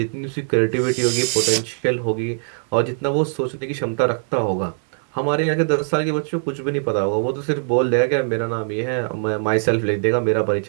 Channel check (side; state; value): left; silent; digital silence